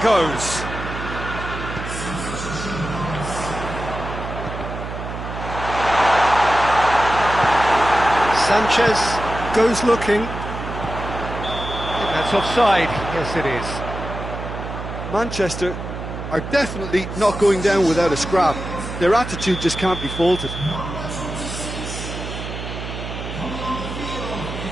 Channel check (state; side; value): noise; right; hum, 7 dB below the sound